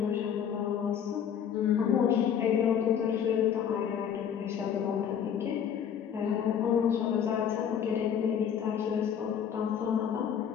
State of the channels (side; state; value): right; quieter; 8.4 dB